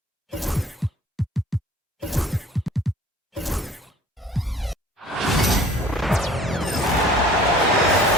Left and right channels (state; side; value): normal; both; correlation 0.49